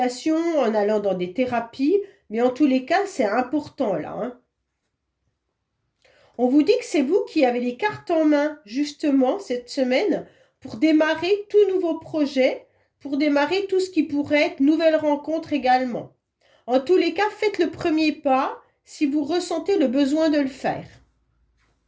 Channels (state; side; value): identical; both; correlation 1.00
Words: en allant dans des thérapies. Mais en tous les cas, c'est important là, hein. On vous dit que c'est vous qui avez les cartes en main, justement, cette semaine, pour démarrer tout nouveau projet, pour démarrer tout ce qui pourrait être nouvelle rencontre également. En tous les cas, faites le premier pas si vous ressentez le besoin de le faire.